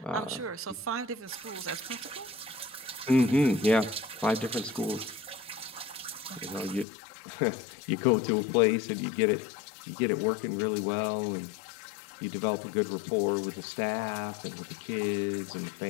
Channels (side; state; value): right; drops out; at 6.9 s